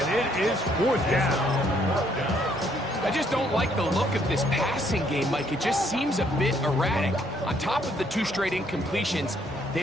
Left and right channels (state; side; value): normal; both; correlation 0.68